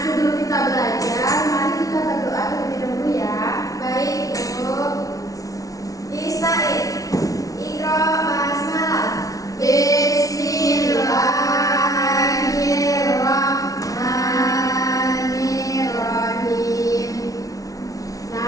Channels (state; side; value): late; right; 0.17 ms